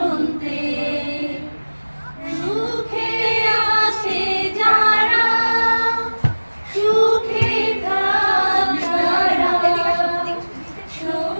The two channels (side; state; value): both; inverted; correlation -1.00